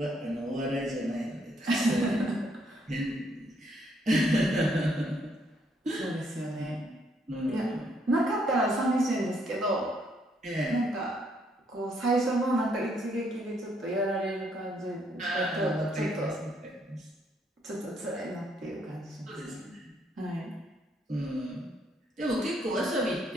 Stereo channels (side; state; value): both; normal; correlation 0.71